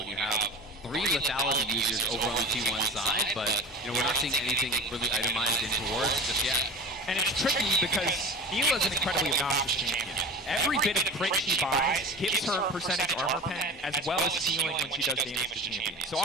when you have 3 lethality users over on the T1 side, but we're not seeing anything really itemized into work just yet. And it's tricky because Mila's an incredibly obnoxious champion. Every bit of crit she buys gives her percentage armor pen as well as healing when she does damage to champions. So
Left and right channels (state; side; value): normal; both; correlation 0.34